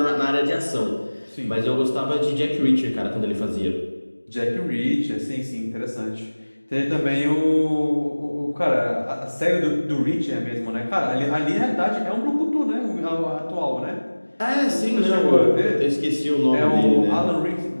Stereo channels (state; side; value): inverted; both; correlation -1.00